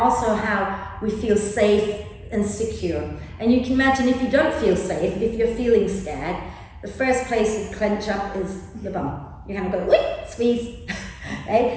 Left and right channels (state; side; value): identical; both; correlation 1.00